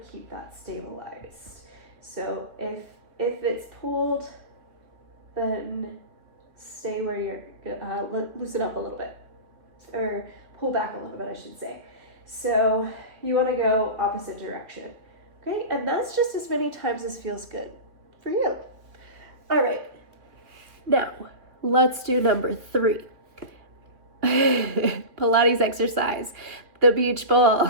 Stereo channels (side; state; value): left; late; 2.9 ms